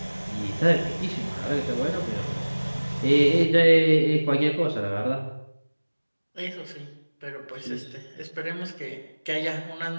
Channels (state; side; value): inverted; both; correlation -1.00